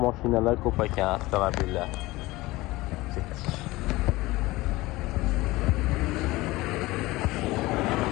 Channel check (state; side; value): quieter; right; 19.8 dB